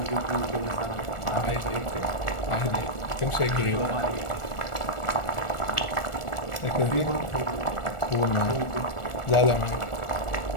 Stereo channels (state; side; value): late; right; 1.4 ms